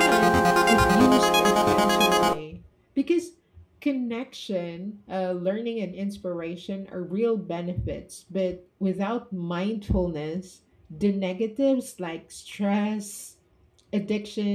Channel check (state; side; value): identical; both; correlation 1.00